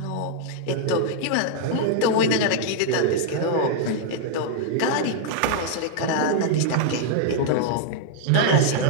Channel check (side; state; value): both; different; correlation -0.01